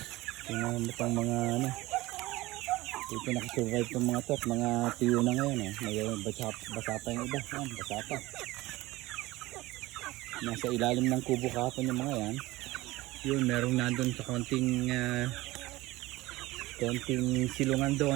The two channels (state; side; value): quieter; left; 19.3 dB